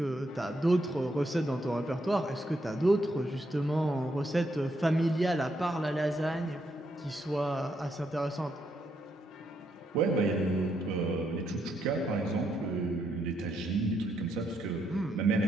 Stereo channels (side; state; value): both; normal; correlation 0.78